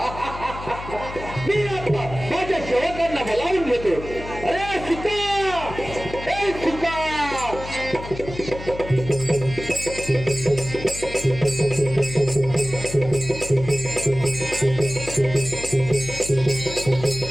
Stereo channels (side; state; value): left; noise; hum, 11 dB below the sound